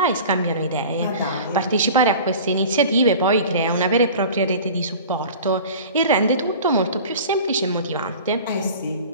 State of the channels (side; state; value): both; inverted; correlation -0.39